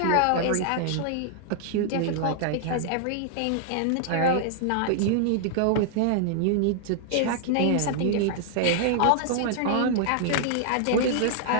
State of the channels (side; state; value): both; different; correlation -0.01